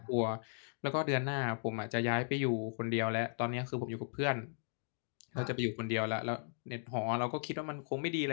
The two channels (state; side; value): silent; right; digital silence